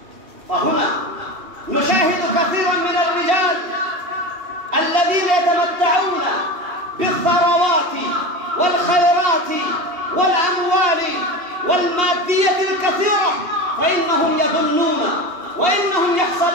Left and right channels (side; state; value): left; late; 2.8 ms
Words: فهنا نشاهد كثيرا من الرجال الذين يتمتعون بالثروات والخيرات والأموال والمادية الكثيرة، فإنهم يظنون وإنهم